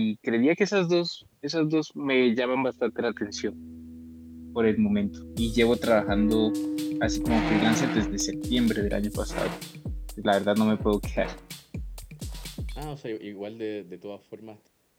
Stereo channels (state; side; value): identical; both; correlation 1.00